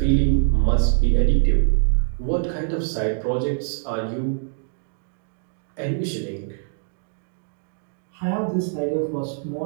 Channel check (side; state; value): left; silent; digital silence